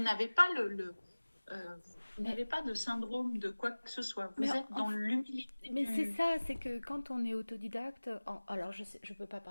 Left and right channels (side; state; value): both; inverted; correlation -1.00